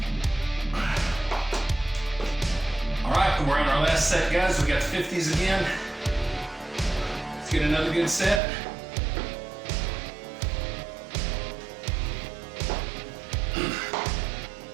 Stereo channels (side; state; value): left; drops out; at 8.4 s